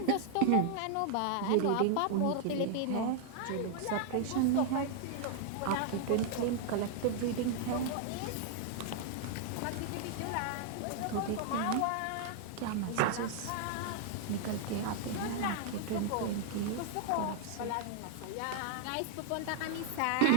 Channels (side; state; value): both; different; correlation 0.00